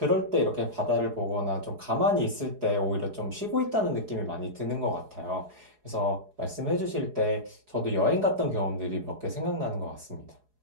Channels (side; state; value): left; late; 4.8 ms